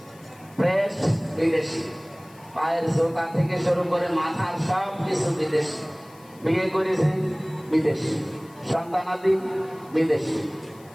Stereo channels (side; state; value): left; noise; hiss, 26 dB below the sound